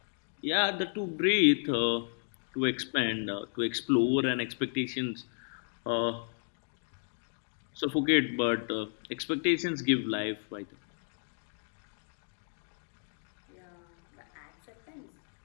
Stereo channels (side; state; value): right; silent; digital silence